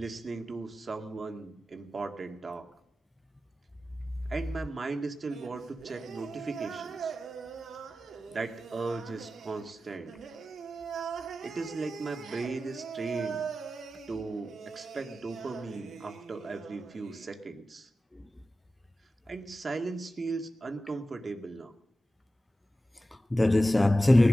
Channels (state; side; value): normal; both; correlation 0.93